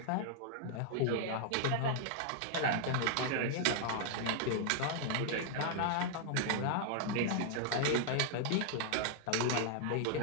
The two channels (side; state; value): both; different; correlation 0.00